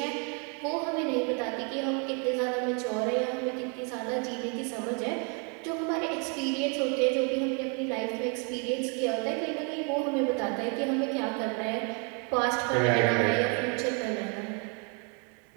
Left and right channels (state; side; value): quieter; left; 35.9 dB